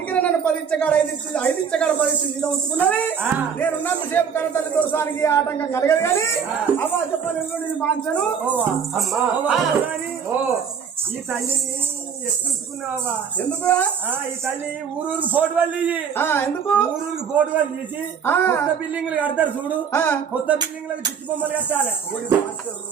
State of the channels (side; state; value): left; quieter; 7.0 dB